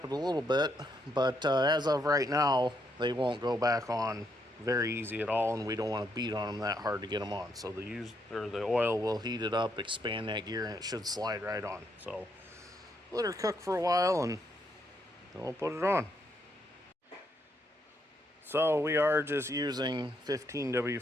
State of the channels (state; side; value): normal; both; correlation 0.76